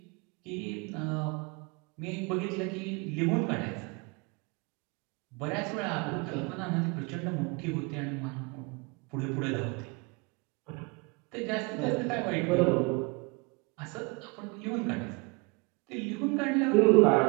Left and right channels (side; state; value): left; quieter; 29.0 dB